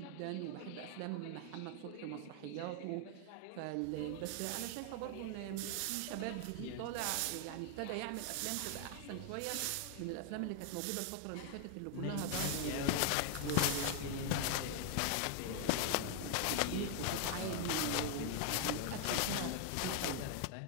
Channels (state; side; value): different; both; correlation 0.00